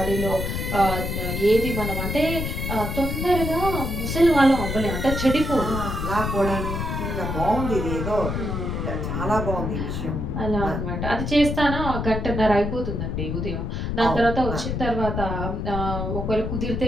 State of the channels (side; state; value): left; noise; rumble, 2 dB below the sound